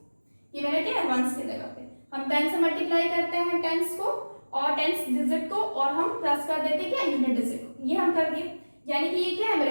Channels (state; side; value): inverted; both; correlation -1.00